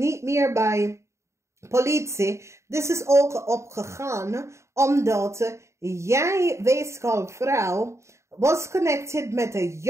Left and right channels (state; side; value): late; left; 0.14 ms